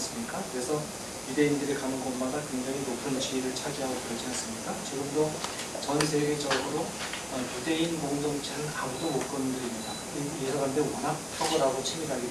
그래서 유대인들이 가는 곳마다 굉장히 높은 지위를 차지하고 그러지 않습니까? 지금도 전 세계적으로 유대인 공동체는 아무도 못 건드립니다. 이 사람들이 워낙 탁월하고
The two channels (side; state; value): both; identical; correlation 1.00